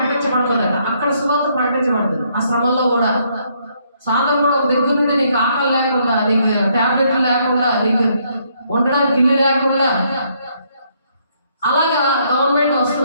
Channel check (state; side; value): inverted; both; correlation -0.71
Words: అక్కడ సువార్త ప్రకటించబడుతుంది. ఆ శ్రమంలో కూడా సాధన కూడా ఒక దగ్గర నుండి నీకు ఆకలి లేకుండా, నీకు టాబ్లెట్లు లేకుండా, నీకు ఉండడానికి ఇల్లు లేకుండా అలాగా గవర్నమెంట్